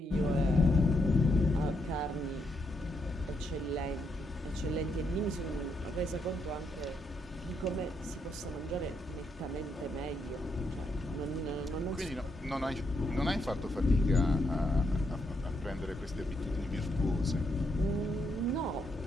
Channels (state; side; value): normal; both; correlation 0.79